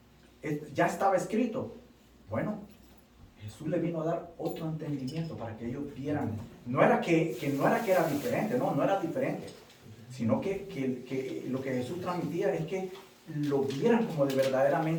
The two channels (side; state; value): both; identical; correlation 1.00